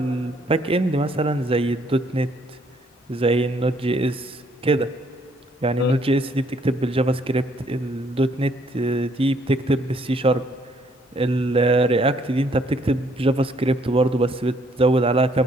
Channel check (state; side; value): normal; both; correlation 0.66